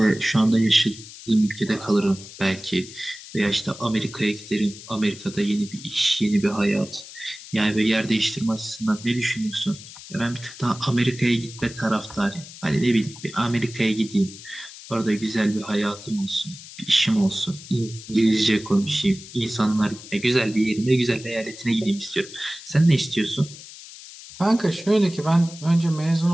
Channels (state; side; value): noise; left; hiss, 16 dB below the sound